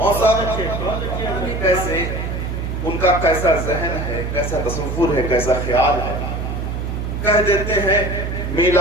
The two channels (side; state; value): right; noise; hum, 4 dB below the sound